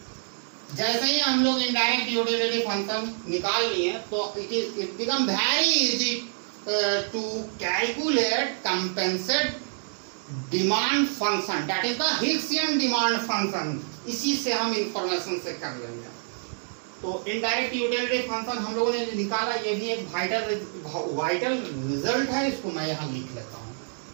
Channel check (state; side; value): silent; left; digital silence